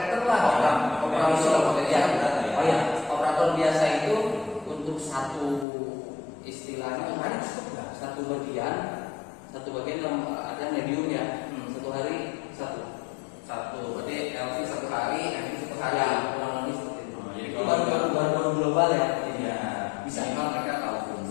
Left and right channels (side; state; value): right; drops out; at 5.7 s